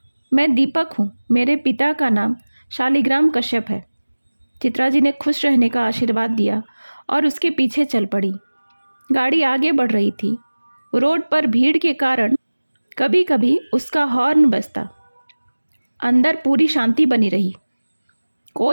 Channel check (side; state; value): both; inverted; correlation -1.00